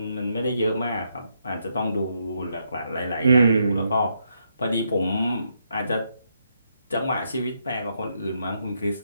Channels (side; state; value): both; inverted; correlation -0.78